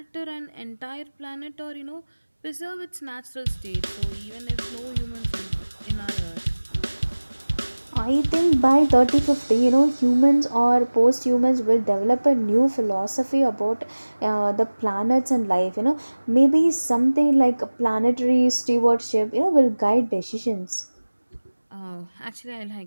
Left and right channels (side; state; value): both; inverted; correlation -1.00